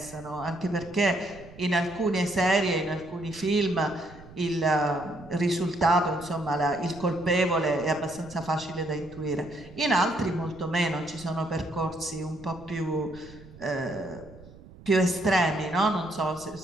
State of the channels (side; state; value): right; noise; rumble, 20 dB below the sound